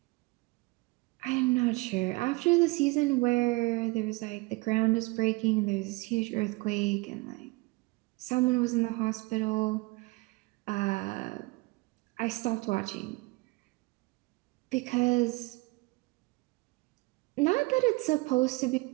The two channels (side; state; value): left; quieter; 25.0 dB